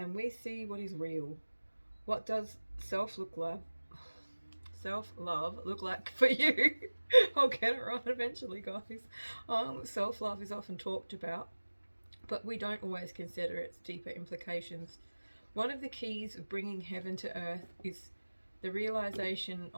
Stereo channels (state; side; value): inverted; both; correlation -1.00